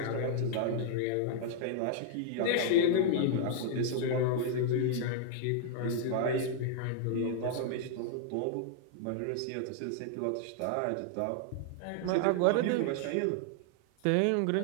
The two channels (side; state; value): both; different; correlation -0.01